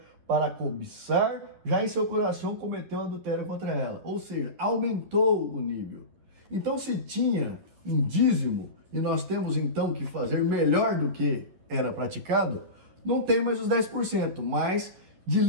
para cobiçar, já em seu coração cometeu adultério contra ela. Ou seja, aumentou o nível. Então, se tinha um dízimo e nós temos então que fazer melhor do que era praticado, não tem mais os 10%, mas de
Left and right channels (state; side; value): late; left; 11 ms